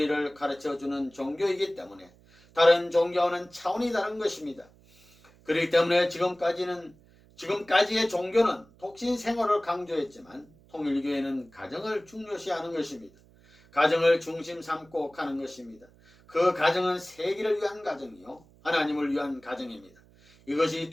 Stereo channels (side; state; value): right; noise; hum, 28 dB below the sound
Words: 가르쳐주는 종교이기 때문에 다른 종교와는 차원이 다른 것입니다. 그렇기 때문에 지금까지의 종교는 독신 생활을 강조했지만 통일교회는 가정을 중요시하는 것입니다. 가정을 중심 삼고 가는 것입니다. 그 가정은 세계를 위한 가정이요, 하나님을 위한 가정입니다. 이것이